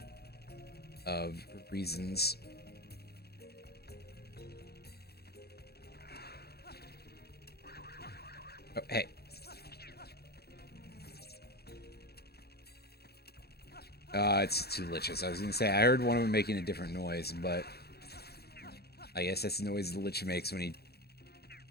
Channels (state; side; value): late; right; 0.46 ms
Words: of reasons. Oh, hey. It's two liches. I was gonna say, I heard one of them making a different noise, but I guess that's the noise the lich makes when he